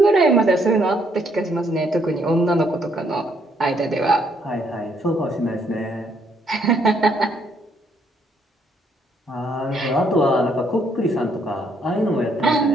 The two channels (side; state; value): both; normal; correlation 0.70